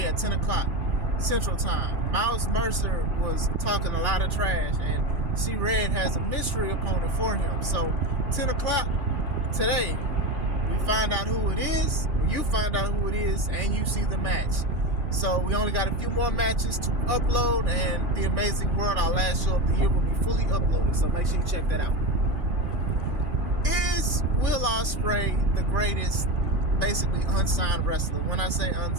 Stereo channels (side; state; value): left; late; 2.5 ms